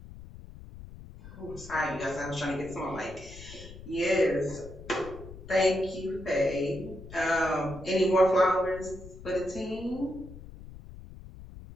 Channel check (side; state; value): left; noise; rumble, 15 dB below the sound